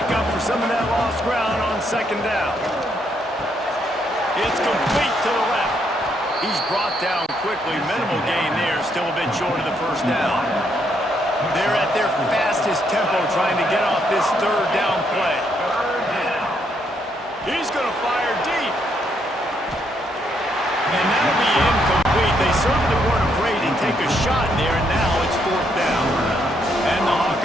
up for some of that lost ground on second down. It's complete to the left. He's brought down quickly. Minimal gain there. Still a bit short of the first down. They're at their fastest tempo trying to get off this third down play. He's going to fire deep. And that'll be incomplete. They certainly weren't afraid to take a shot there, and now it's fourth down. And the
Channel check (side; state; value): both; normal; correlation 0.74